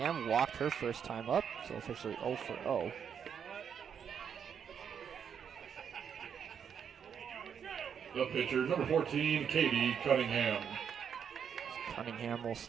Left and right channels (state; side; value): quieter; left; 7.7 dB